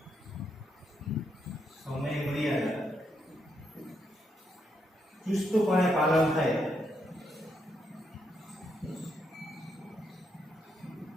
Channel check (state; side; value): normal; both; correlation 0.79